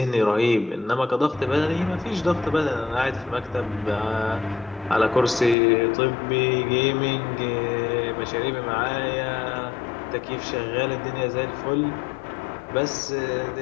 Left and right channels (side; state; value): right; drops out; at 5.6 s